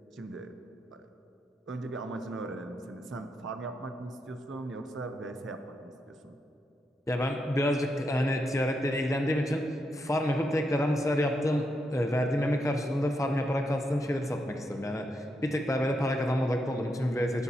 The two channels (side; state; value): both; normal; correlation 0.82